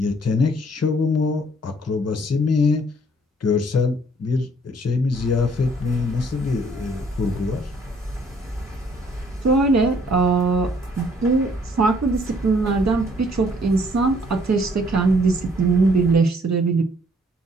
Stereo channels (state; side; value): normal; both; correlation 0.62